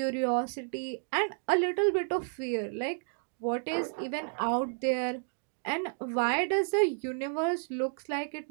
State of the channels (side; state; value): left; silent; 57 dB below the other